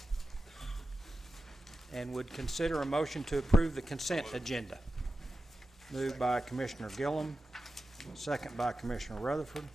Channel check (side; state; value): both; normal; correlation 0.92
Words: and would consider a motion to approve the consent agenda. Moved by Commissioner Gillum, second by Commissioner Rutherford.